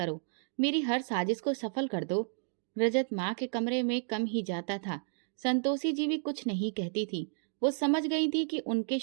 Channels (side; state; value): left; silent; digital silence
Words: मेरी हर साजिश को सफल कर दो। रजत माँ के कमरे में कम ही जाता था। संतोषी जी भी कुछ नहीं कहती थी। वो समझ गई थी कि उनके